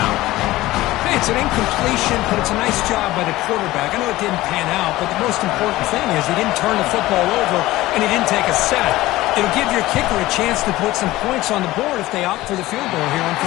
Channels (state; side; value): quieter; right; 17.4 dB